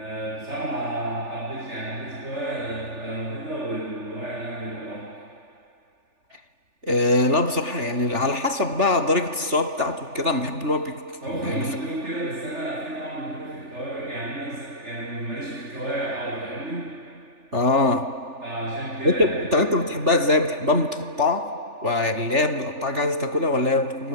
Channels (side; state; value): left; late; 3.4 ms